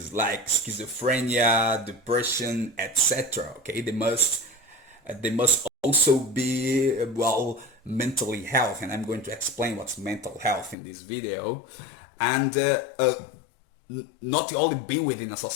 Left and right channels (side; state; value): right; drops out; at 10.8 s